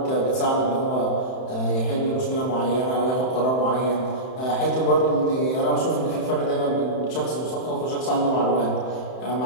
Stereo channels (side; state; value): right; late; 31 ms